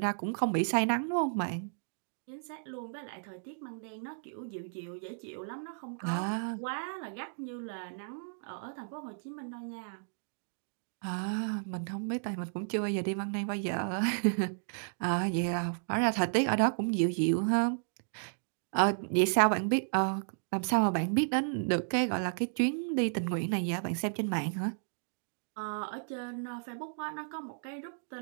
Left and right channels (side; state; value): left; silent; digital silence